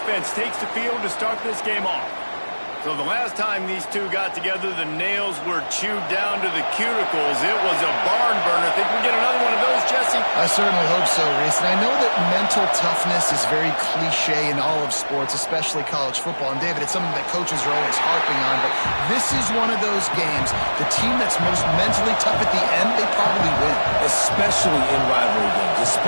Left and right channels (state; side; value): inverted; both; correlation -1.00